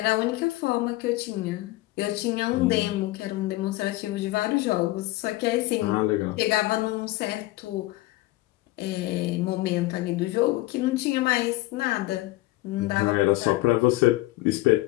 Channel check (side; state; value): right; quieter; 18.8 dB